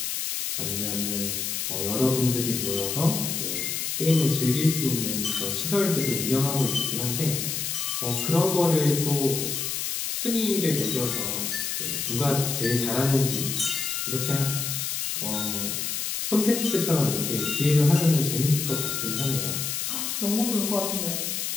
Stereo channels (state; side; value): noise; left; hiss, 2 dB below the sound